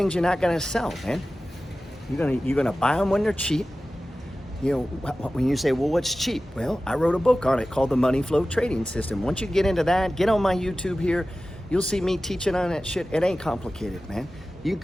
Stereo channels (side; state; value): both; normal; correlation 0.95